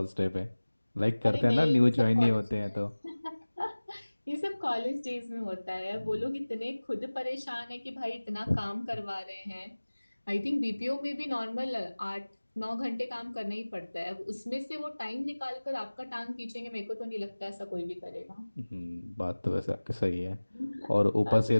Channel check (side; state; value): both; inverted; correlation -1.00